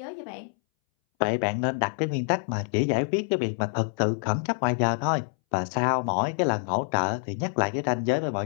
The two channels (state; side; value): silent; right; 61 dB below the other